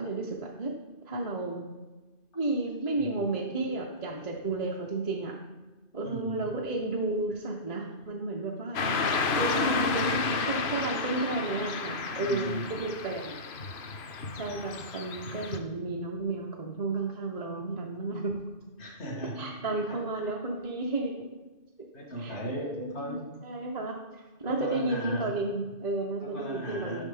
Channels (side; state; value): right; late; 2.5 ms